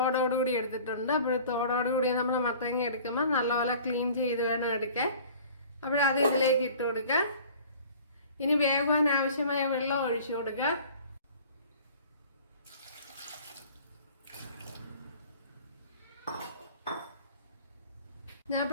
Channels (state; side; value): inverted; both; correlation -0.46